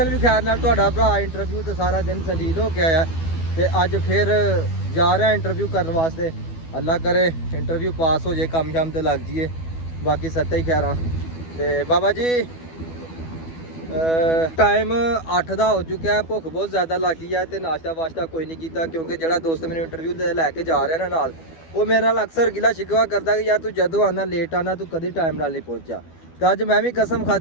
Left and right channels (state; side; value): late; right; 12 ms